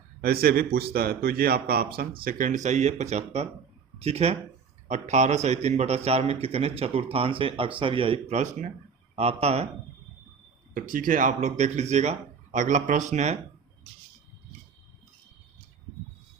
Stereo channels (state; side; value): quieter; left; 6.2 dB